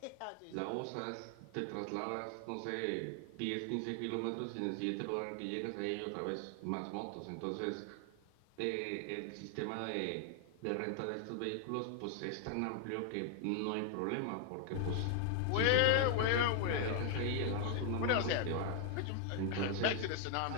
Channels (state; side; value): different; both; correlation 0.00